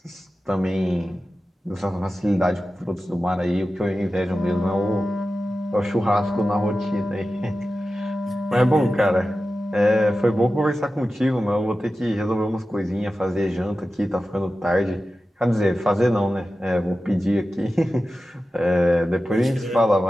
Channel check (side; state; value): both; normal; correlation 0.94